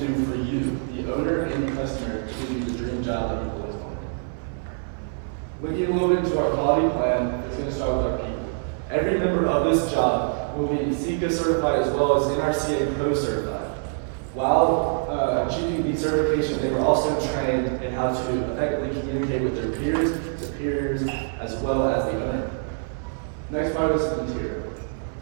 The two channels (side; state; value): left; silent; 62 dB below the other